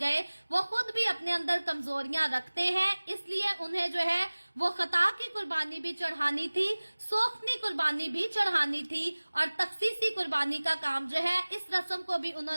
वो खुद भी अपने अंदर कमजोरियां रखते हैं, इसलिए उन्हें जो है वो खता की कुर्बानी भी चढ़ानी थी, सोख्तनी कुर्बानी भी चढ़ानी थी, और तखसीसी कुर्बानी का काम जो है इस रस्म को भी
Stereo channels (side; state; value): both; inverted; correlation -1.00